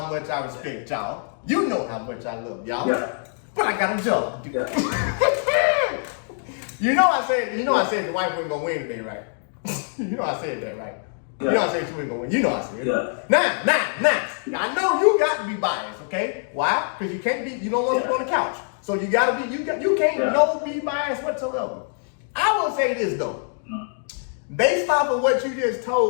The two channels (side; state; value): right; silent; 58 dB below the other